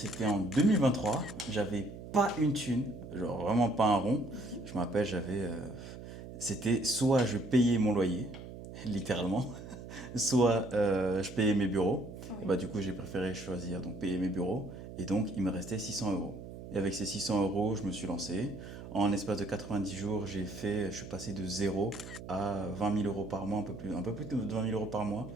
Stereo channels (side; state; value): right; noise; hum, 12 dB below the sound